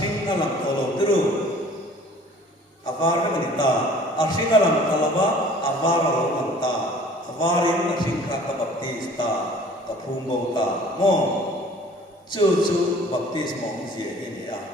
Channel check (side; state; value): both; normal; correlation 0.50